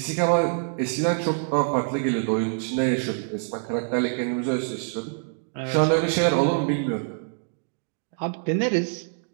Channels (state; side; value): silent; left; digital silence